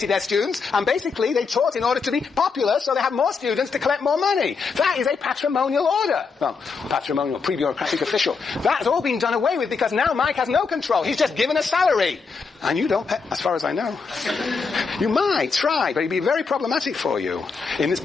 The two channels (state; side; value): quieter; right; 5.0 dB